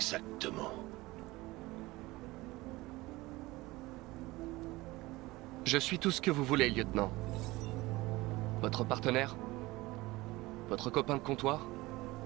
Je suis tout ce que vous voulez, lieutenant. Votre partenaire? Votre copain de comptoir?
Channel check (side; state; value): left; quieter; 20.3 dB